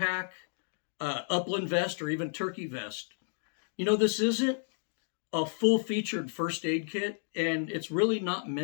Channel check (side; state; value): right; silent; digital silence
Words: upland vest, or even turkey vest. This isn't a full featured first aid kit, and it's really not